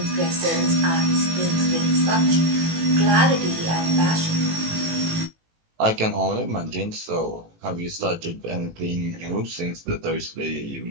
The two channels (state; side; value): late; left; 18 ms